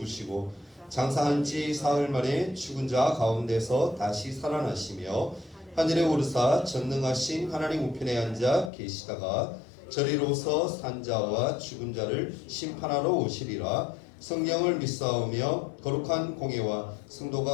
장사한 지 사흘 만에 죽은 자 가운데서 다시 살아나시며 하늘에 오르사 전능하신 하나님 우편에 앉아 계시다가 저리로서 산 자와 죽은 자를 심판하러 오시리라. 성령을 믿사오며 거룩한 공예와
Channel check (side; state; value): right; drops out; at 8.7 s